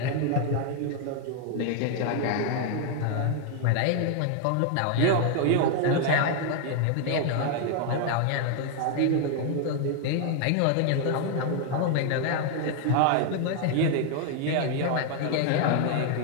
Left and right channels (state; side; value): different; both; correlation 0.00